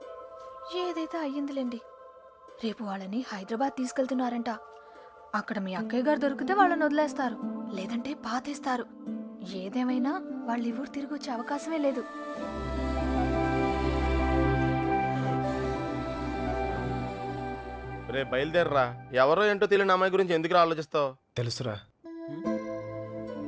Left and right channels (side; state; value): both; identical; correlation 1.00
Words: ఏదైతే అయ్యిందిలేండి. రేపు వాళ్ళని హైదరాబాద్ తీసుకెళ్తున్నారంట. అక్కడ మీ అక్కయ్య గారు దొరికితే వాళ్ళని వదిలేస్తారు, లేదంటే పాతేస్తారు. ఏదేమైనా వాళ్ళు ఈ ఊరు తిరిగి వచ్చే అవకాశమే లేదు. రే బయలుదేరరా. ఎవరో ఏంటో తెలియని అమ్మాయి గురించి ఎందుకు ఆలోచిస్తావు? తెలుసురా.